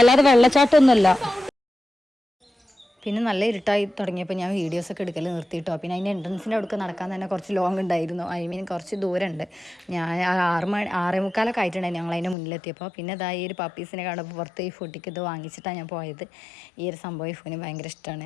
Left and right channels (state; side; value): drops out; right; at 12.4 s